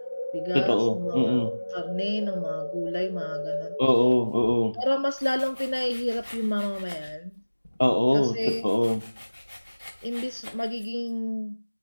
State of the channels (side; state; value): both; inverted; correlation -1.00